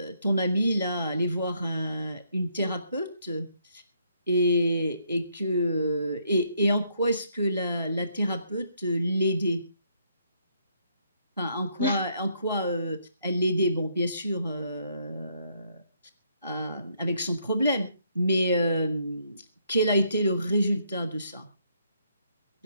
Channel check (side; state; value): both; inverted; correlation -0.72